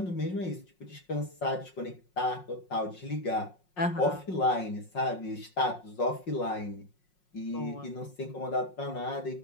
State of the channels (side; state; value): right; late; 5.5 ms